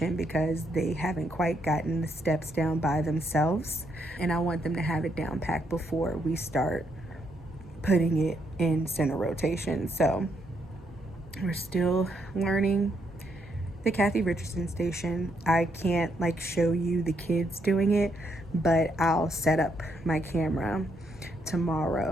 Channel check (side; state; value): both; normal; correlation 0.75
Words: because they haven't quite gotten the steps down by themselves, and I want them to have it down packed before we start putting it in center rotation. So we're still learning the Kathy Richardson station. I can't like show you the kids doing it, but I'll set up my camera